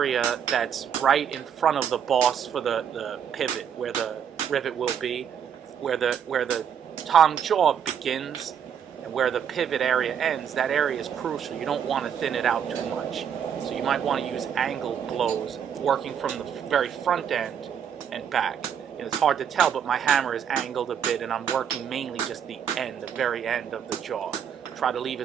that's right in front of the boss for the pivot, where the rivet will be, where the tong jaw begins and where the pivot area ends. That area is crucial. You don't want to thin it out too much. So you might want to use angled blows, working from the very front end and back. It's hard to tell, but my hammer is angled a bit, and I'm working mainly just the end, the very end of the jaw. Try to leave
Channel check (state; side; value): quieter; left; 8.2 dB